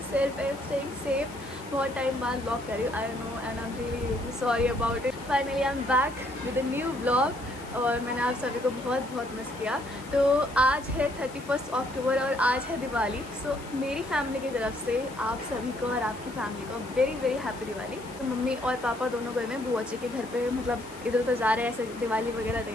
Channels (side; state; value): left; noise; hiss, 20 dB below the sound